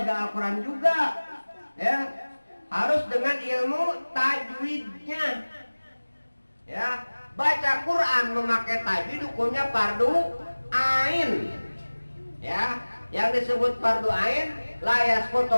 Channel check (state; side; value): inverted; both; correlation -1.00